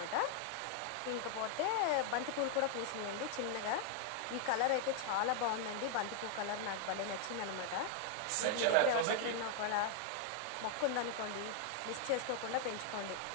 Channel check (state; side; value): different; both; correlation 0.00